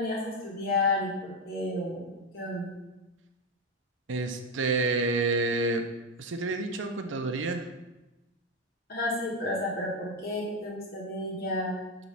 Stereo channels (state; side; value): normal; both; correlation 0.10